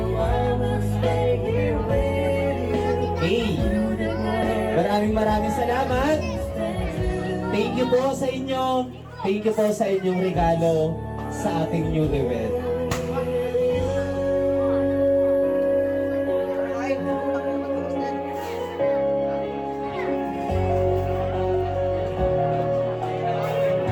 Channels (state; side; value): identical; both; correlation 1.00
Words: Hey. Maraming salamat. Thank you po sa inyo. Thank you po sa inyong regalo sa ating newlywed.